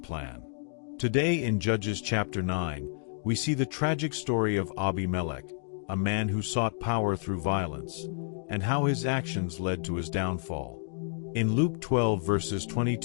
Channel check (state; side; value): silent; right; digital silence